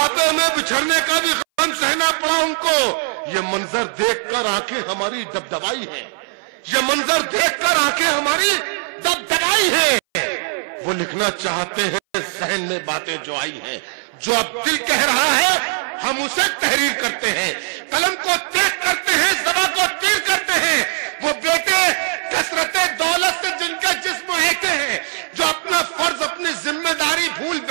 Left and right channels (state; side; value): silent; left; 61 dB below the other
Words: میں بچھڑنے کا بھی غم سہنا پڑا ان کو۔ یہ منظر دیکھ کر آنکھیں ہماری دبدبائی ہیں، یہ منظر دیکھ کر آنکھیں ہماری دبدبائی ہیں، وہ لکھنا چاہتے ہیں ذہن میں باتیں جو آئی ہیں، جو اب دل کہہ رہا ہے ہم اسے تحریر کرتے ہیں، قلم کو تیز کرتے ہیں، زبان کو تیر کرتے ہیں، وہ بیٹے کثرت دولت سے جن کے جسم ایکے ہیں، جو اپنا فرض اپنی ذمہ داری بھول